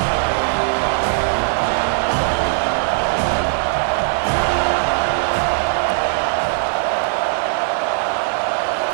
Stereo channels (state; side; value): silent; left; digital silence